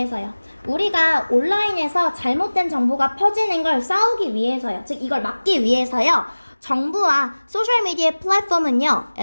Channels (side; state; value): both; inverted; correlation -1.00